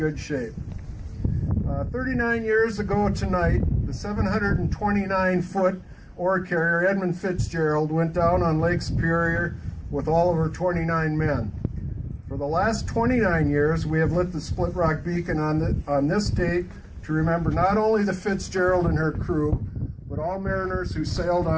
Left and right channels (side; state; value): both; identical; correlation 1.00